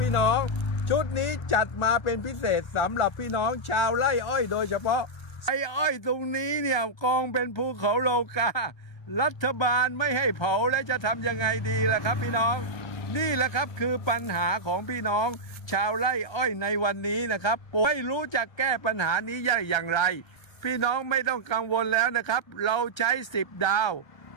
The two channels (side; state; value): right; late; 1.3 ms